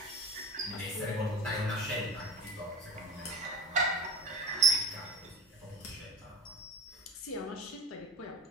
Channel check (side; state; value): both; normal; correlation 0.31